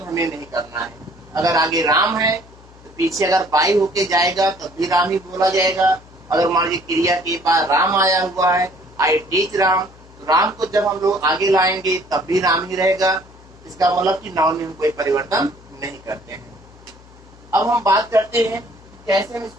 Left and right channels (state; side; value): noise; left; hum, 23 dB below the sound